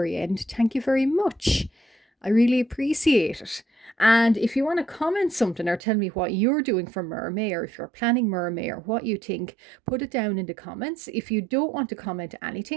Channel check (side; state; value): left; drops out; at 5.8 s